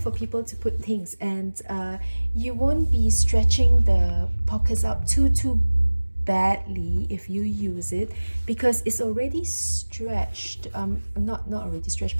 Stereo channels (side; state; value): both; inverted; correlation -1.00